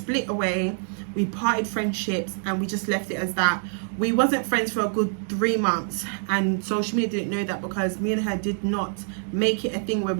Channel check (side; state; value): left; silent; 60 dB below the other